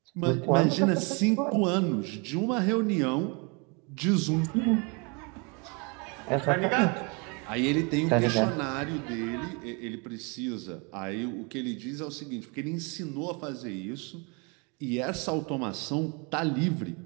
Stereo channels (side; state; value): left; quieter; 31.7 dB